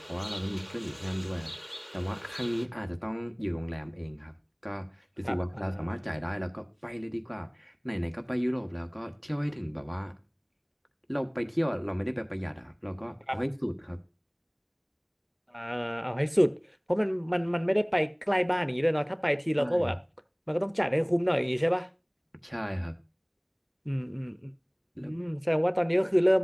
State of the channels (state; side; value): identical; both; correlation 1.00